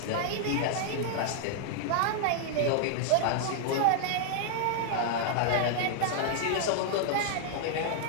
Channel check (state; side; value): different; both; correlation -0.01